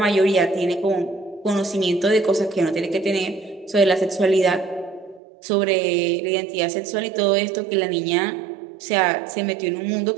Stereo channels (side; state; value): left; drops out; at 5.2 s